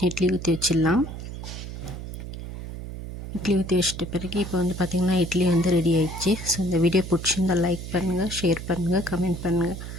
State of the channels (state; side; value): noise; right; hum, 9 dB below the sound